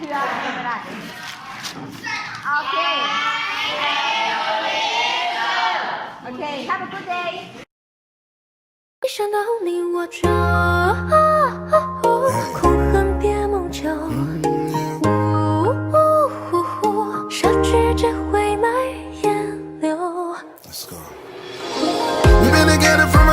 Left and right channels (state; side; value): identical; both; correlation 1.00